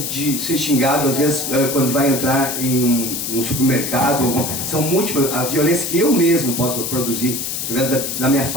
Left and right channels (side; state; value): left; noise; hiss, 3 dB below the sound